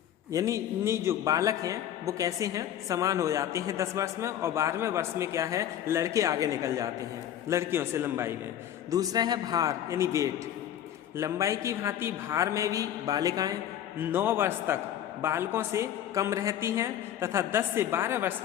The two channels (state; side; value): quieter; right; 10.9 dB